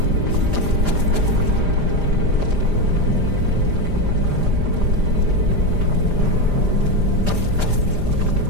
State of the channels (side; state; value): left; late; 5.0 ms